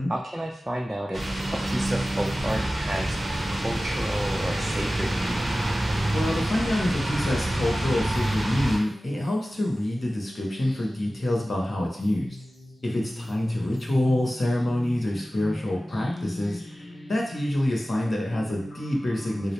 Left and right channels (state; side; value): normal; both; correlation 0.96